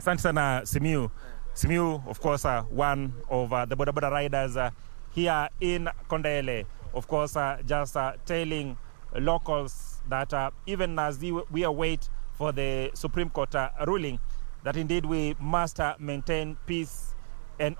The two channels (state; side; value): silent; left; digital silence